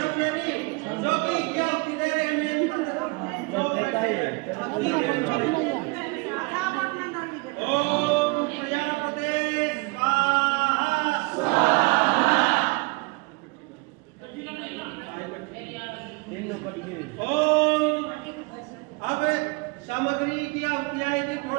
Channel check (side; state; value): left; quieter; 28.7 dB